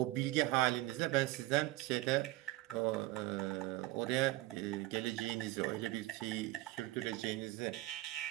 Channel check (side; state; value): left; quieter; 19.0 dB